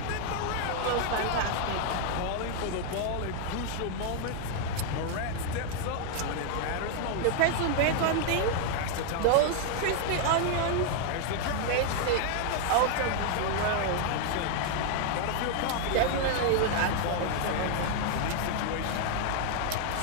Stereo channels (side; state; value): both; different; correlation 0.00